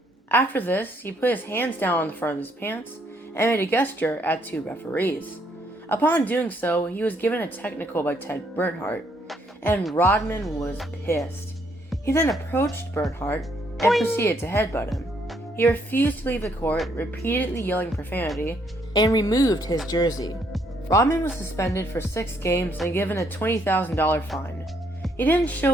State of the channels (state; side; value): normal; both; correlation 0.70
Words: After this, he put his hands down on the front of his pants and made a gesture at two referees. Upon doing so, he was given a technical by Ted Bernhardt, and Rodman was pissed. He then approached Bernhardt and proceeded to headbutt him. He refused to leave the court, repeatedly yelling profanity, and removed his jersey. Rodman was suspended for 6 games and given a $20,000 fine. He didn't